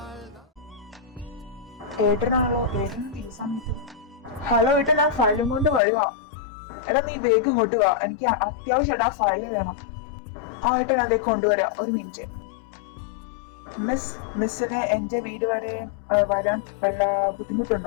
ഏട്ടനാണല്ലോ ഏട്ടൻ ഈ സമയത്ത്. ഹലോ ഏട്ടൻ, ആ ഫയലും കൊണ്ട് വരുവാ. എടാ നീ വേഗം ഇങ്ങോട്ട് വാ, എനിക്ക് അത്യാവശ്യമായിട്ട് ആ ഫയൽ വേണം. ആ ഏട്ടൻ അതേ കൊണ്ടുവരാ, ഒരു മിനിറ്റ്. മിസ്സിന് എന്റെ വീട് വരെ വരാൻ വല്ല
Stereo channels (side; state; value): right; drops out; at 5.8 s